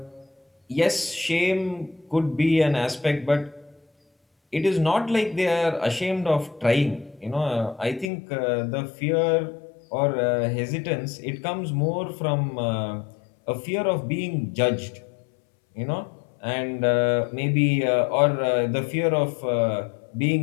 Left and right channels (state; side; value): drops out; right; at 8.1 s